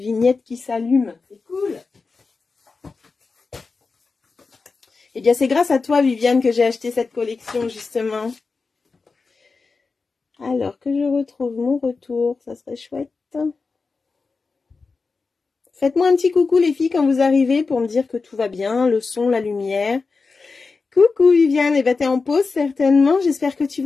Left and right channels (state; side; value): quieter; right; 4.3 dB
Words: qui s'allume. C'est cool. Eh bien, c'est grâce à toi, Viviane, que j'ai acheté cette collection, justement. Alors, que je retrouve mon retour, ça serait chouette. Faites-moi un petit coucou, les filles, quand vous arrivez, pour me dire que tout va bien, le son, la lumière. Coucou, Viviane. Eh bien, t'es en pause, certainement. J'espère que tu